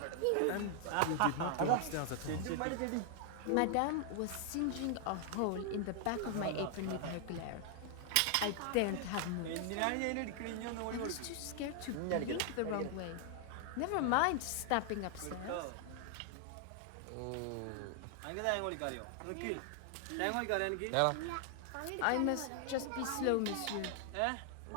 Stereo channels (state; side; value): different; both; correlation 0.00